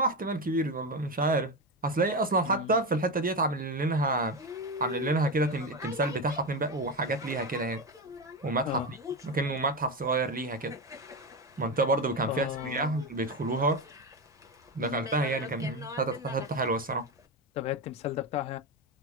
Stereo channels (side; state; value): both; normal; correlation 0.16